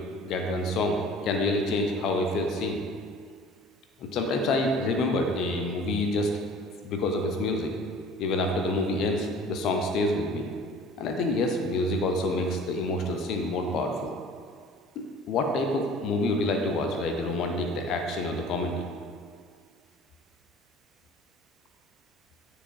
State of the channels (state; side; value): normal; both; correlation 0.46